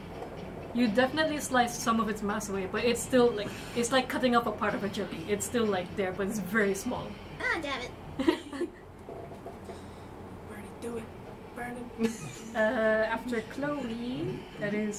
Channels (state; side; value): identical; both; correlation 1.00